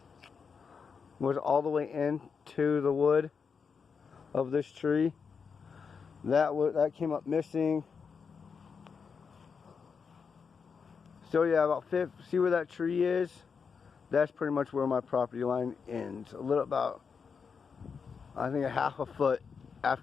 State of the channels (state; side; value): quieter; right; 5.9 dB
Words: Was all the way into the wood of this tree. That came up missing. So yeah, see where that tree is? That's pretty much where my property line ends. I think a half a foot